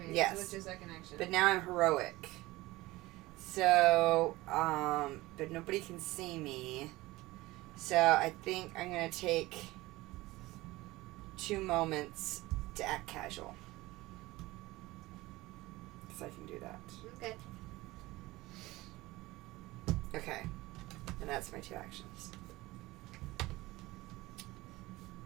Yes. So what's your second action? But now I'm heroic. So, but nobody can see me. So I think I'm gonna take 2 moments to act casual. Because I can do that. Okay. Okay. And that's my 2 actions.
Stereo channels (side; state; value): left; quieter; 19.4 dB